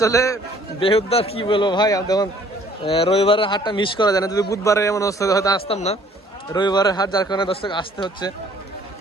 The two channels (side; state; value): both; normal; correlation 0.57